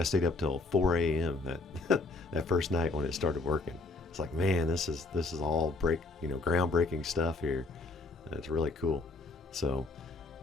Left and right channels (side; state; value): right; quieter; 3.4 dB